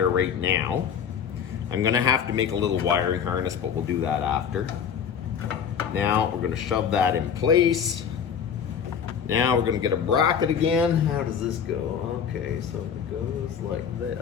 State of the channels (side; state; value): right; quieter; 7.6 dB